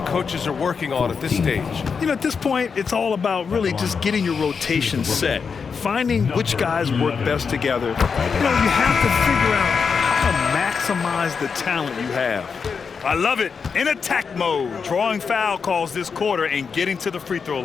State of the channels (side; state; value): right; quieter; 5.8 dB